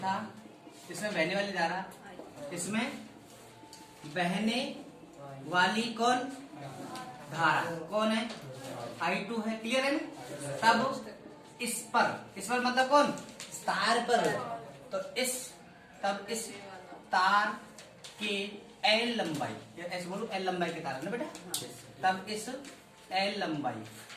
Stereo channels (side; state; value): both; identical; correlation 1.00